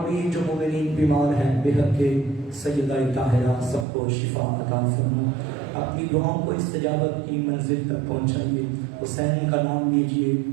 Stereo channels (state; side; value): drops out; left; at 3.9 s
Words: بھی جو مومنین بیمار ہیں بحق سیدہ طاہرہ سب کو شفا عطا فرما اپنی دعاؤں کو استجابت کی منزل تک پہنچائیے حسین کا نام لیجئے